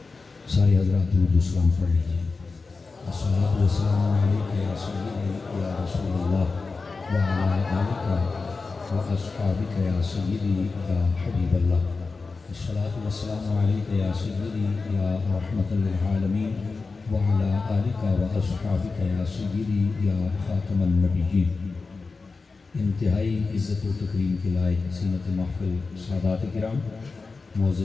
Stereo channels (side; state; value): right; quieter; 4.2 dB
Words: سارے حضرات درود و سلام پڑھ لیجیے. الصلاۃ والسلام علیک یا سیدی یا رسول اللہ وعلی آلک واصحابک یا سیدی یا حبیب اللہ. الصلاۃ والسلام علیک یا سیدی یا رحمت للعالمین وعلی آلک واصحابک یا سیدی یا خاتم النبیین. انتہائی عزت و تکریم کے لائق زینت محفل سادات کرام،